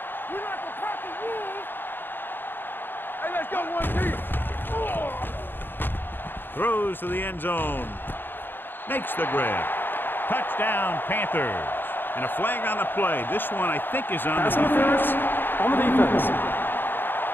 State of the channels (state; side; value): late; right; 0.097 ms